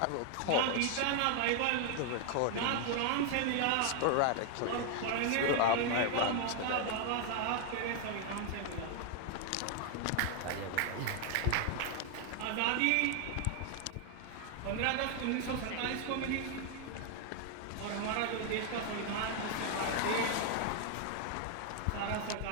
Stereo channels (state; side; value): different; both; correlation 0.00